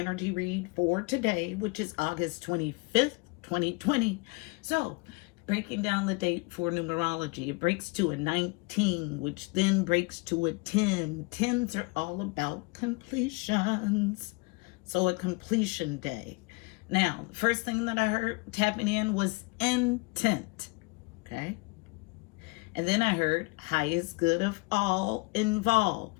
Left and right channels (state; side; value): quieter; right; 28.2 dB